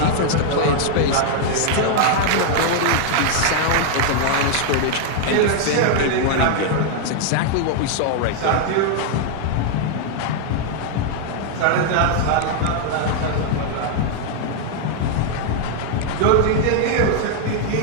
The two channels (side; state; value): both; different; correlation 0.00